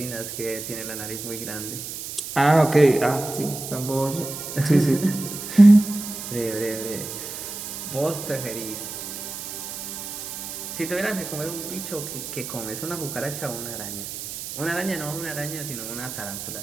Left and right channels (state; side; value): noise; right; hiss, 8 dB below the sound